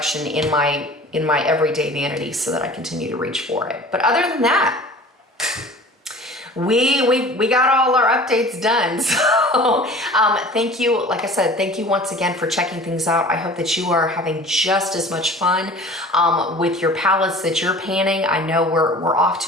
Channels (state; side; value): normal; both; correlation 0.43